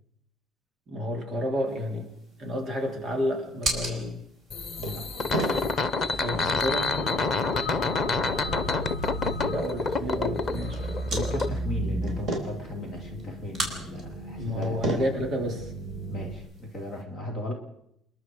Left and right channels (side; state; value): both; normal; correlation 0.60